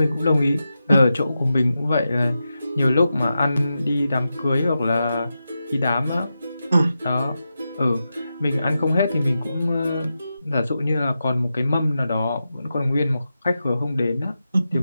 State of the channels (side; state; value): both; inverted; correlation -0.90